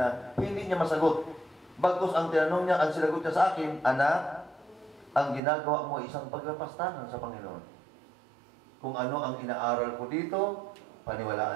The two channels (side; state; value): left; drops out; at 5.4 s